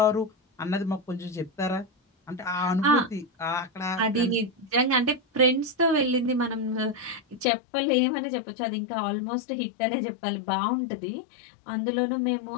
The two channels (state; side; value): drops out; right; at 7.5 s